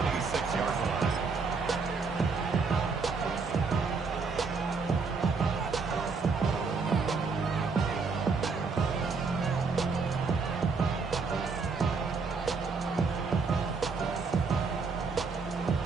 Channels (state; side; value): quieter; left; 4.7 dB